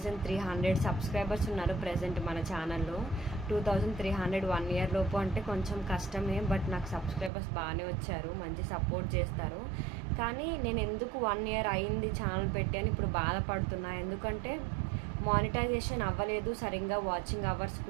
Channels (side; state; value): left; drops out; at 7.3 s